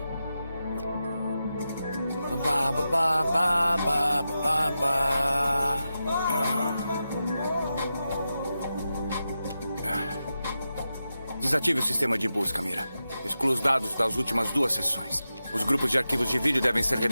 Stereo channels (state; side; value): inverted; both; correlation -0.90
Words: Ba, ba, ba, ba, ba, ba, ba. Desative o sistema de busca, Mira. Exclua os dados das últimas 2 sessões. Os grupos de arquivos de vídeo devem ser